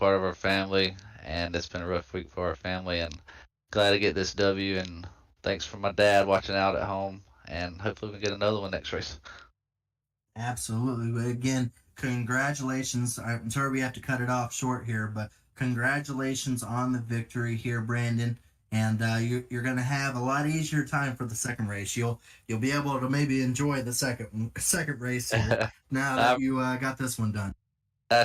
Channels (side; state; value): both; identical; correlation 1.00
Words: of our family, and it's been a rough week for our family. And glad to get this W. And thanks for my dad watching out at home. And hopefully we can get another one next race. Absolutely. But again, congratulations. I'm sorry we have to cut it off short here, but congratulations on the victory here, Brandon. And you're going to have a lot easier time for the second race. You'll be able to maybe enjoy the second race here now that you got this one done.